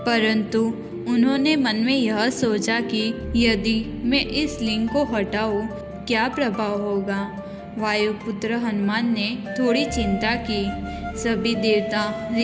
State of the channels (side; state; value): both; identical; correlation 1.00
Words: परंतु उन्होंने मन में यह सोचा कि यदि मैं इस लिंग को हटाऊं, क्या प्रभाव होगा। वायुपुत्र हनुमान ने थोड़ी चिंता की। सभी देवता,